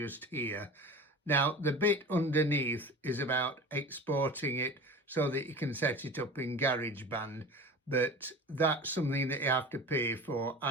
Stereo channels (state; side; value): normal; both; correlation 0.35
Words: here. Now the bit underneath is about exporting it so that you can set it up in GarageBand, but that's something that you have to pay for,